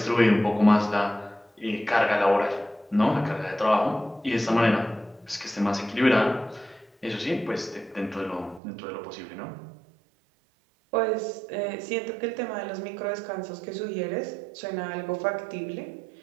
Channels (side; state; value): left; drops out; at 8.6 s